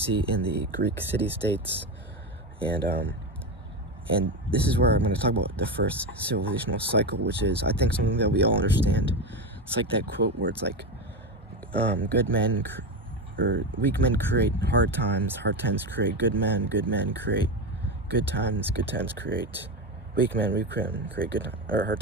in the Greek city-states, and this is where I'm going to talk about the first civilizational cycle, which is, I think, something that we all understand. It's like that quote where it's like, weak men create hard times create good men create good times create weak men create hard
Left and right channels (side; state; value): both; normal; correlation 0.16